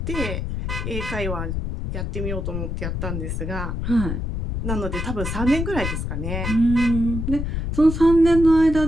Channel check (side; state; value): left; noise; rumble, 3 dB below the sound